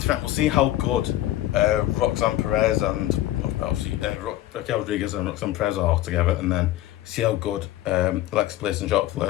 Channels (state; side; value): quieter; right; 14.6 dB